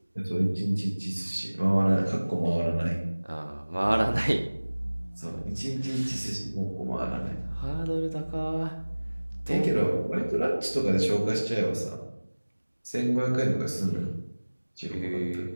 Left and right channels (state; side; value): inverted; both; correlation -1.00